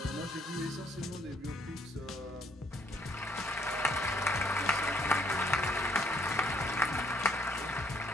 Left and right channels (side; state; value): both; normal; correlation 0.67